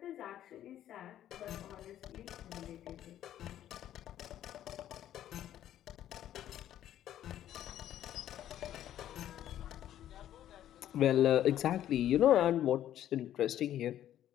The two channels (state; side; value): quieter; right; 11.7 dB